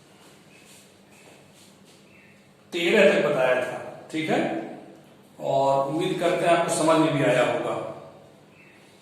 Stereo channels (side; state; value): both; identical; correlation 1.00